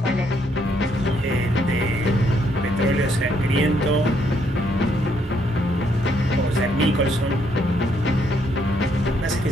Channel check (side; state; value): both; normal; correlation 0.72